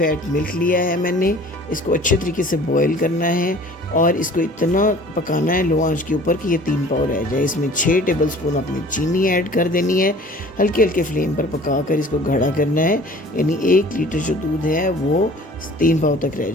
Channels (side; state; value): both; normal; correlation 0.48